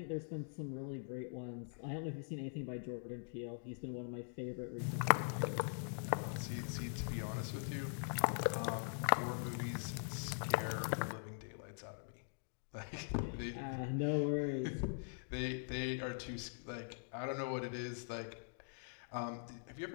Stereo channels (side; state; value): right; silent; digital silence